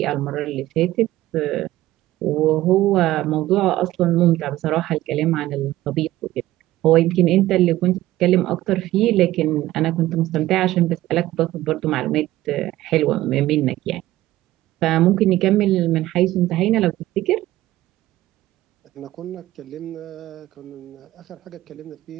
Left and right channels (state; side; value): quieter; left; 15.7 dB